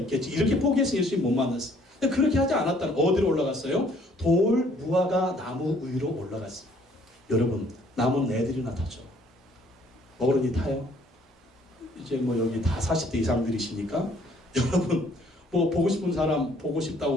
이렇게 포기해서 예수님 못 만났어요. 근데 그렇게 하지 않았다는, 어디로 올라갔어요? 돌 무화과 나무 위로 올라갔어요. 여러분, 나무는 애들이나 타죠. 어른이 타요? 이제 여기 다 40대 이상들이시니까 여러분 보고 싶은 사람 보고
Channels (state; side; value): normal; both; correlation 0.61